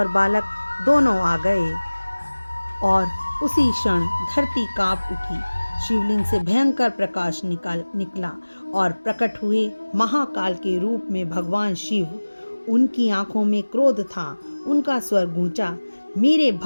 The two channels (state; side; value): inverted; both; correlation -1.00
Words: बालक दोनों आ गए और उसी क्षण धरती कांप उठी। शिवलिंग से भयंकर प्रकाश निकला और प्रकट हुए महाकाल के रूप में भगवान शिव। उनकी आंखों में क्रोध था। उनका स्वर गूंजा, मेरे